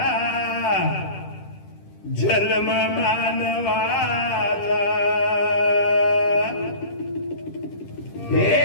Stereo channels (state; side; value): late; right; 10 ms